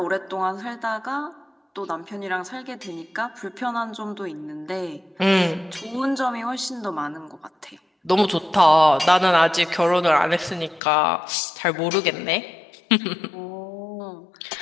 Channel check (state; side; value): drops out; right; at 10.8 s